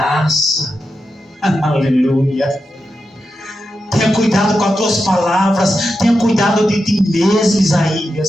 Aleluia. Tenha cuidado com as tuas palavras. Tenha cuidado de ti mesmo,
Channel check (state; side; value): normal; both; correlation 0.88